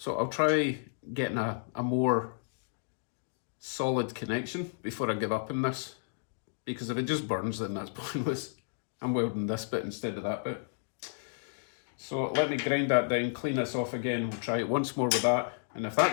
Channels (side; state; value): right; silent; digital silence